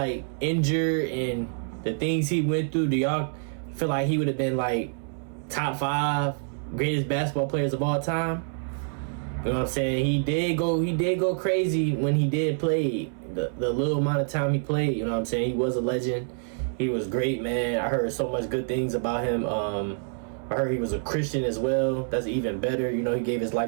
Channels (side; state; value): left; silent; 60 dB below the other